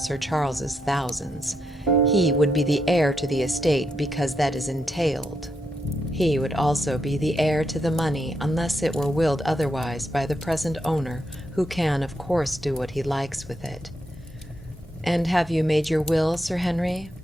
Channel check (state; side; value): normal; both; correlation 0.81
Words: Charles's thousands. He would be the heir to the estate because that is entailed. He would also be the heir to the money unless it were willed otherwise by the present owner, who can, of course, do what he likes with it. And have you made your will, Sir Henry?